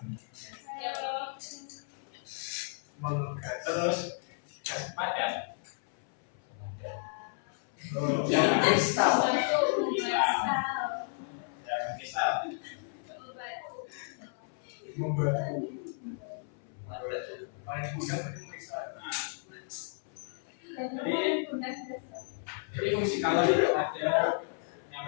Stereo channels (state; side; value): silent; right; 56 dB below the other